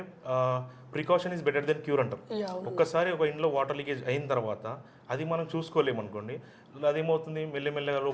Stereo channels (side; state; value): both; identical; correlation 1.00